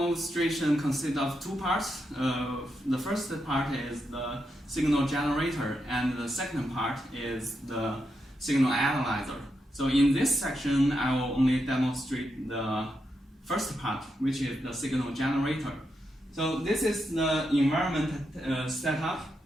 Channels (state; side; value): normal; both; correlation 0.84